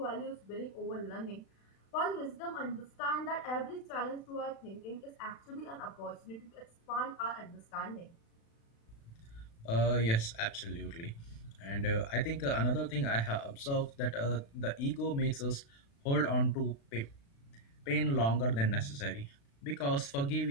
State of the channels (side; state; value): right; late; 36 ms